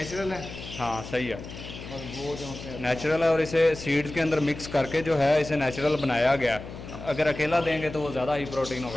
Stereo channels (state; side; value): noise; left; hum, 12 dB below the sound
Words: है। हाँ सही है, और वो जो नेचुरल है। और इसे सीड्स के अंदर मिक्स करके जो है इसे नेचुरल बनाया गया। अगर अकेला देंगे तो वो ज़्यादा हाई प्रोटीन